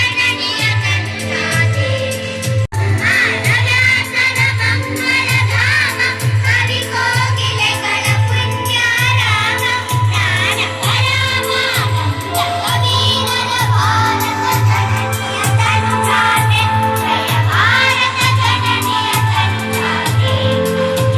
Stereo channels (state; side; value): identical; both; correlation 1.00